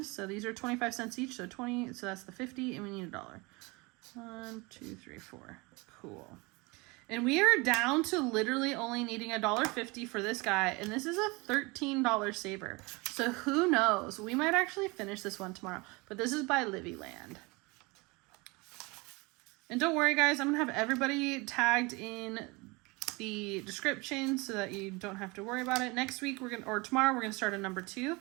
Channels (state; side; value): quieter; left; 25.8 dB